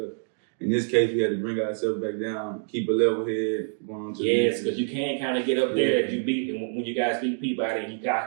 In this case, we had to bring ourselves back down, keep a level head, going on to because you can't kind of get up there if you beat, and when you guys beat Peabody, and you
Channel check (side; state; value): left; silent; 61 dB below the other